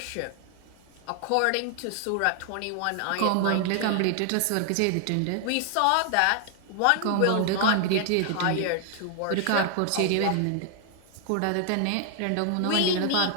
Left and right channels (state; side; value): different; both; correlation 0.00